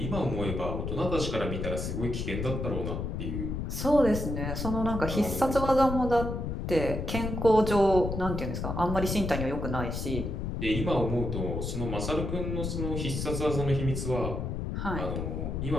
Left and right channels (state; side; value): noise; left; rumble, 3 dB below the sound